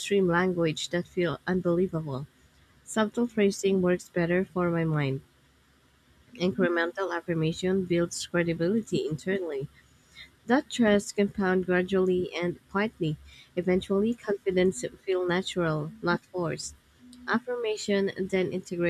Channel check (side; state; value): both; identical; correlation 1.00